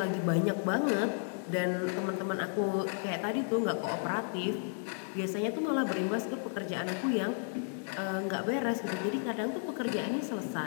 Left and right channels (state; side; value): silent; right; 56 dB below the other